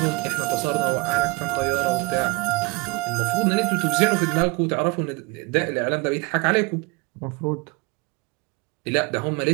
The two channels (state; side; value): quieter; left; 26.0 dB